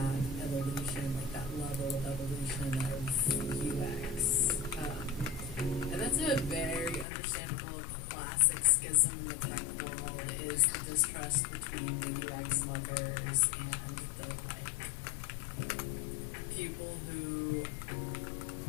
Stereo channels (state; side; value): drops out; right; at 7.1 s